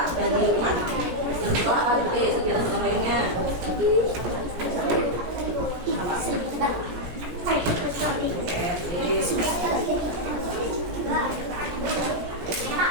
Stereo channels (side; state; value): left; late; 17 ms